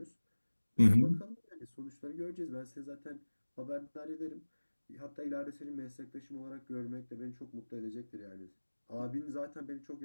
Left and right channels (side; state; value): both; inverted; correlation -1.00